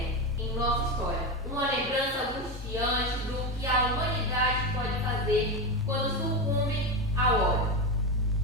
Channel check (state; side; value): normal; both; correlation 0.15